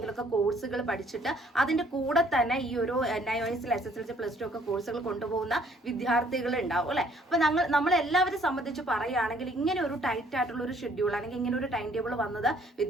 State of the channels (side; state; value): both; normal; correlation 0.62